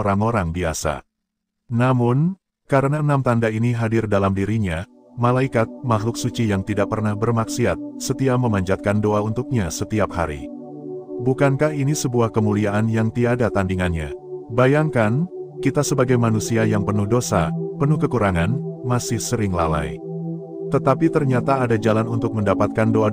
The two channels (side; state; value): both; identical; correlation 1.00